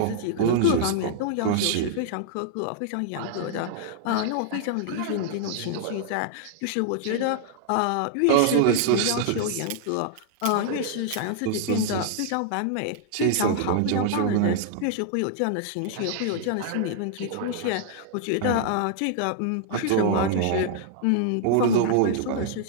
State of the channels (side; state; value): both; different; correlation -0.01